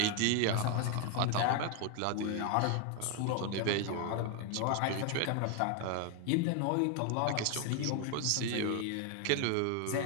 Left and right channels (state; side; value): different; both; correlation 0.01